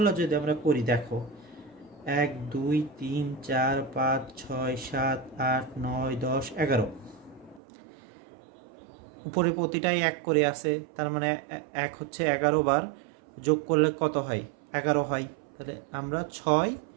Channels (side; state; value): left; drops out; at 7.6 s